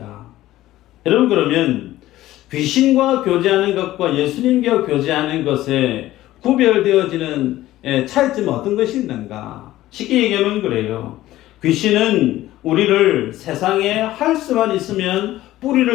여러분, 그러면 귀신과 교제하는 것과 예수님과 교제하는 것에 구별되어지는 차이점은 어떤 것이 있는가? 쉽게 얘기하면 그래요. 귀신은 우리를 세상에 할 수만 있으면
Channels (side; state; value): right; quieter; 15.3 dB